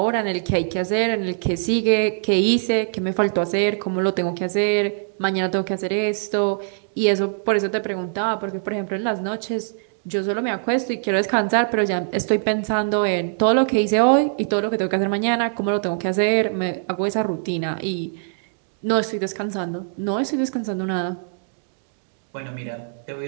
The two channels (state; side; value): silent; left; digital silence